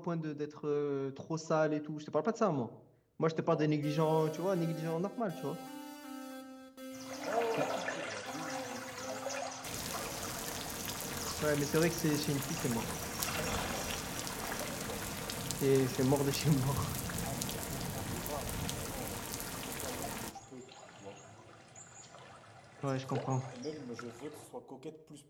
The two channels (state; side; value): identical; both; correlation 1.00